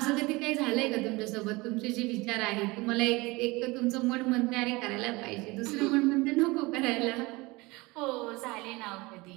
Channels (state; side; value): quieter; left; 23.2 dB